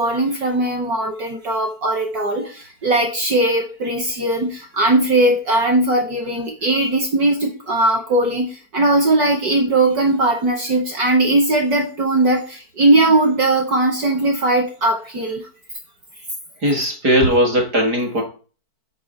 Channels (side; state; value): left; late; 4.5 ms